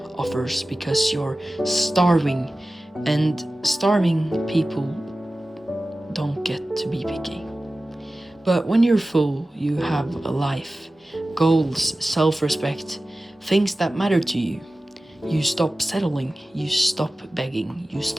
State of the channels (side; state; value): both; normal; correlation 0.96